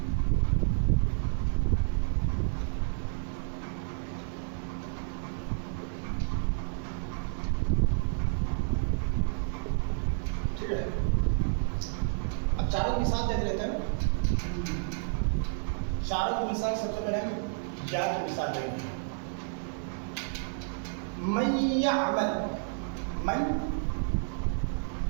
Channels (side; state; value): left; silent; digital silence